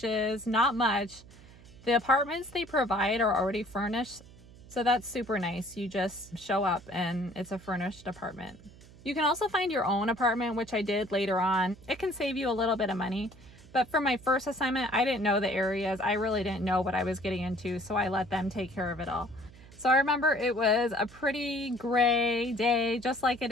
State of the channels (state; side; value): noise; right; hum, 21 dB below the sound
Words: not much. The apartments they provide are already furnished, so that's super nice. You just show up and it's a furnished apartment. You can also find your own apartment, which I did later on. It can save you a little bit of money, but for my first assignment, I didn't know the areas. I really didn't know what I was getting into, so I let them take care of it all. So I remember it was a pretty gray day, just like it